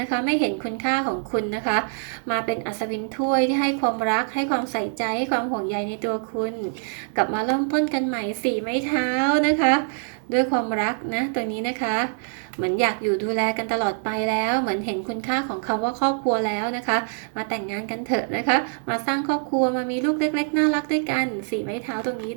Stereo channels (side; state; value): left; silent; 62 dB below the other